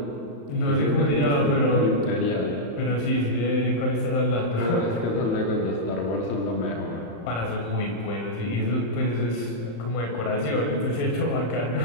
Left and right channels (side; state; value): right; late; 35 ms